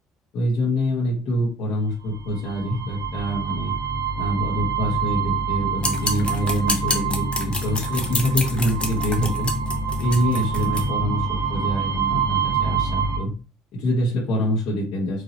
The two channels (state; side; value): normal; both; correlation 0.45